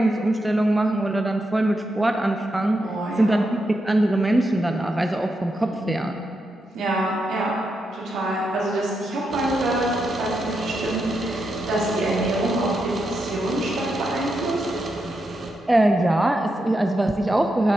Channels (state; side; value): normal; both; correlation 0.84